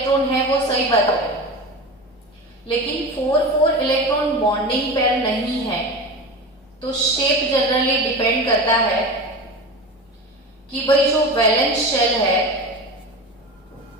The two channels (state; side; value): normal; both; correlation 0.28